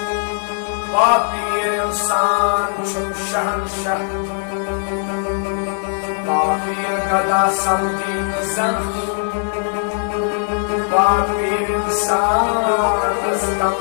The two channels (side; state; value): right; silent; 64 dB below the other